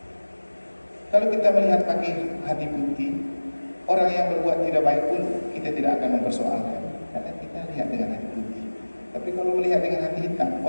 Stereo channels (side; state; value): both; inverted; correlation -1.00